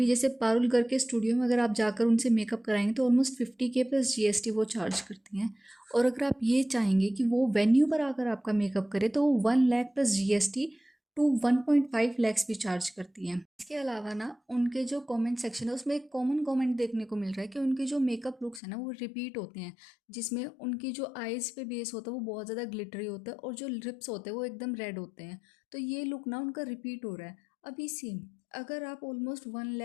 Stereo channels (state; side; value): drops out; right; at 18.6 s